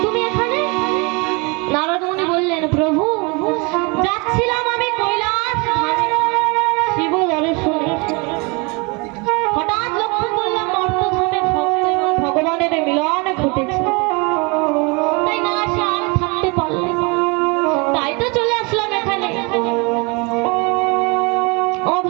তুমি এখানে? নারদ মুনি বললেন, প্রভু যাচ্ছিলাম আমি কৈলাস ধামে শিব দর্শনে, হঠাৎ লক্ষ্য করলাম মর্তধামে ভক্ত এবং ভগবানের মিলন ঘটেছে, তাই না আসে আর থাকতে পারলে, তাই তো চলে আসলাম এখানে। ও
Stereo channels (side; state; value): left; quieter; 29.6 dB